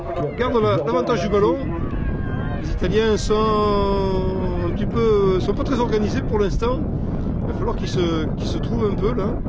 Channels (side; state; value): both; identical; correlation 1.00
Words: garde l'avantage du ballon. Les Italiens sont un petit peu, sont pas très organisés pour l'instant. Il va falloir qu'ils se trouvent un peu là.